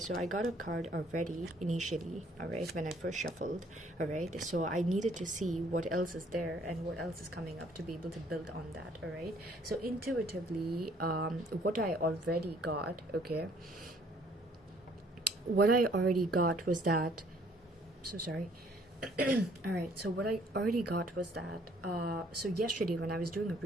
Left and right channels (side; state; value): both; normal; correlation 0.61